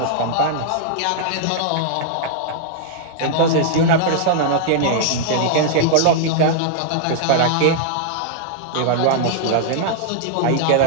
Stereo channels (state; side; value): different; both; correlation -0.01